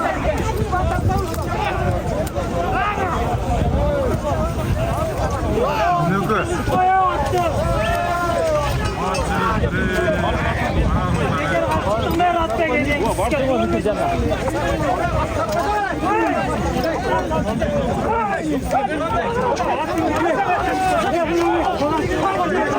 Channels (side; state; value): both; identical; correlation 1.00